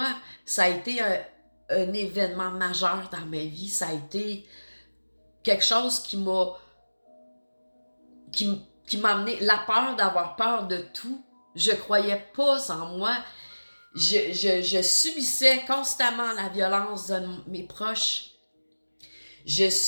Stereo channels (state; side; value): inverted; both; correlation -1.00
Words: ça a été un événement majeur dans ma vie. Ça a été quelque chose qui m'a amené la peur d'avoir peur de tout. Je croyais pas en moi. Je subissais constamment la violence de mes proches. Je